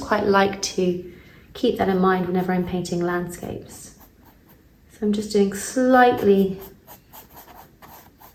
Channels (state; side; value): identical; both; correlation 1.00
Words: like to keep that in mind whenever I'm painting landscapes. So I'm just doing slightly